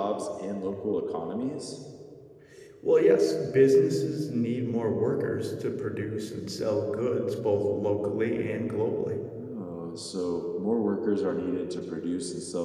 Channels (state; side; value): identical; both; correlation 1.00